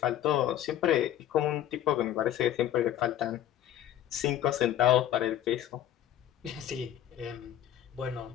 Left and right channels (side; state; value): right; quieter; 11.5 dB